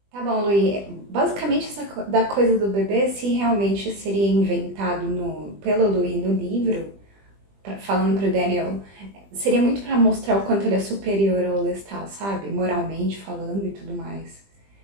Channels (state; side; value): late; left; 20 ms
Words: Tá bom, Luí. Basicamente, da coisa do bebê, se realmente seria inventado pelo Luí no livro, falando pro Daniel, seria muito pra mostrar o quanto ele é superior ao Lestat, sabe? Moralmente falando e tudo mais.